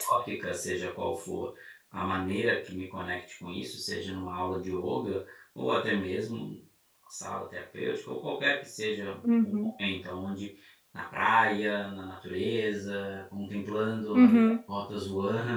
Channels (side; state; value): both; identical; correlation 1.00